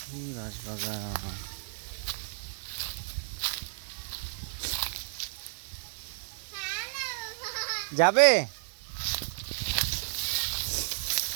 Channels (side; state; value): left; silent; digital silence